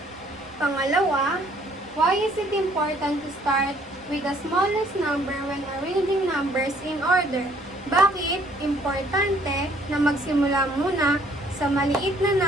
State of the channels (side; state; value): both; normal; correlation 0.61